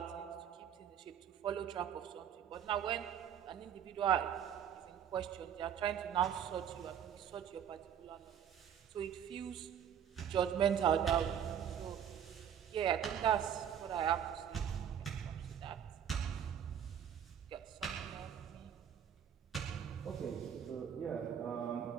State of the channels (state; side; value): quieter; left; 9.0 dB